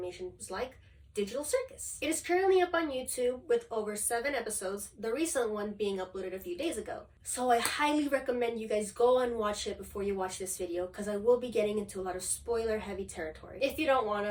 like Digital Circus. It is currently up on YouTube with over 7 episodes, the recent one being uploaded a few days ago. So I highly recommend you guys go and watch it before you watch this video, because I will be getting into a lot of spoiler heavy territory. If you don't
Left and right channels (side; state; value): both; identical; correlation 1.00